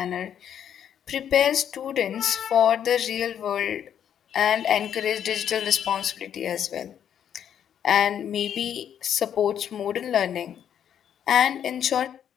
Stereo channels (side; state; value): right; quieter; 9.2 dB